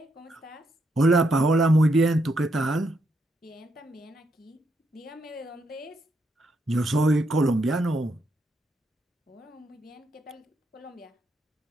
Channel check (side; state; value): both; normal; correlation 0.78